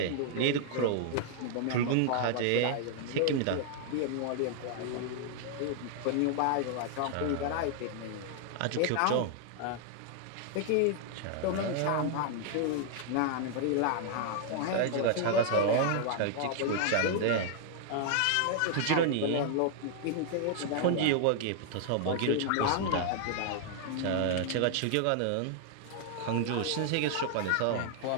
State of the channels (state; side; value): different; both; correlation 0.00